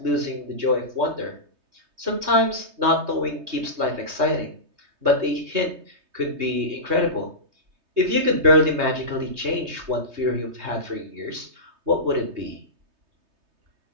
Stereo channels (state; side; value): late; left; 3.2 ms